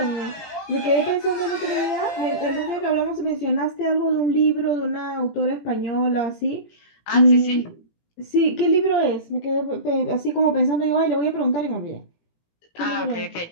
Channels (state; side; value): late; right; 18 ms